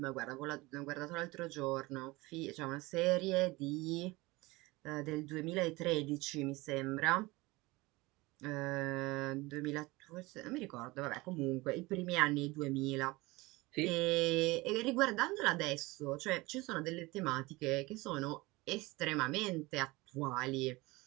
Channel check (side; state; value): left; quieter; 22.1 dB